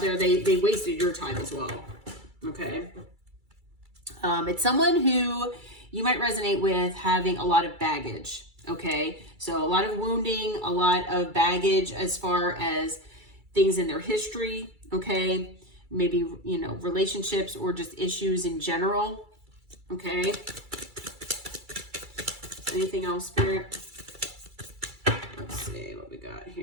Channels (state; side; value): late; left; 2.3 ms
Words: there, they wasted your time as well, okay? It's someone who you might resonate with having a lot of baggage, okay? So a lot of wounding, a lot of baggage as far as things in their history, okay? Maybe, you know, relationships or just issues in general, okay? Anything else, Spirit? Let's see what we got